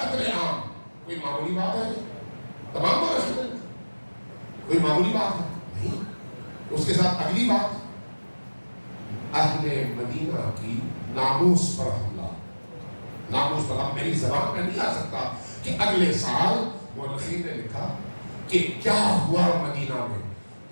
عام کوئی معمولی بات ہے؟ تمام کو رسول کوئی معمولی بات ہے نہیں. اس کے ساتھ اگلی بات, اہل مدینہ کی ناموس پر حملہ. ناموس پر, اب میری زبان میں نہیں آ سکتا کہ اگلے سال مورخین نے لکھا کہ کیا ہوا مدینہ میں.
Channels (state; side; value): inverted; both; correlation -1.00